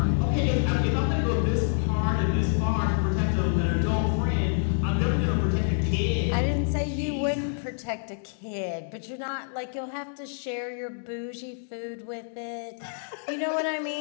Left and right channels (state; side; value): silent; right; digital silence